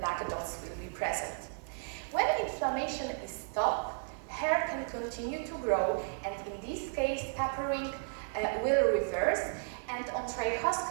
dots will be present. When inflammation is stopped, hair can continue to grow, and in this case tapering will reverse, and on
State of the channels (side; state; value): left; silent; 55 dB below the other